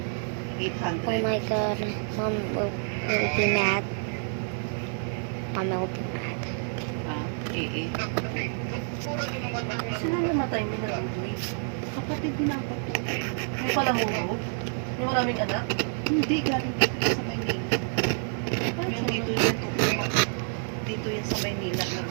800. Oh my god, Mom will be mad. Mom will be mad. Eh. Sino namatay mo na Udoy? Kapatid din ako po. May palahuro? May maraming anak? Hindi, galing dito sa Maynila. Yung dito yan sa Maynila.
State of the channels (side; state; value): left; silent; 57 dB below the other